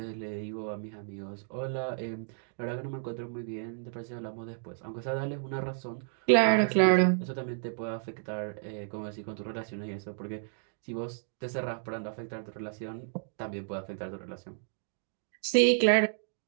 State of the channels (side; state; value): left; silent; digital silence